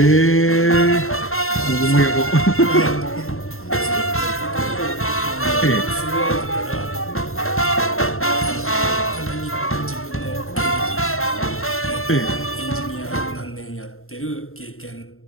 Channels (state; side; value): late; right; 0.61 ms